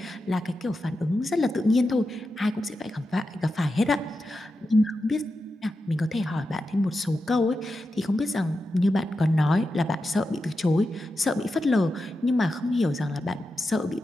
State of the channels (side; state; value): both; normal; correlation 0.90